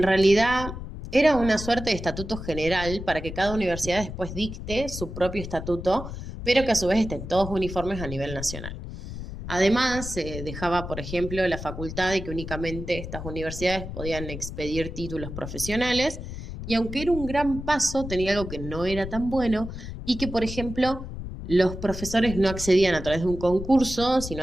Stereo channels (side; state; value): left; noise; rumble, 9 dB below the sound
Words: realidad era una suerte de estatuto general para que cada universidad después dicte su propio estatuto, pero que a su vez estén todos uniformes a nivel nacional. Además, se dejaba, por ejemplo, la facultad de que únicamente estas universidades podían expedir títulos profesionales, y aunque era un gran paso, tenía algo que no era tan bueno, y que, por ejemplo, los profesores no accedían a través de un concurso, sino